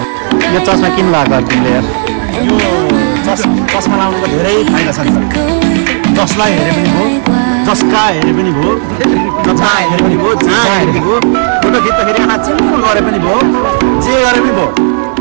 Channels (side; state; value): left; silent; 58 dB below the other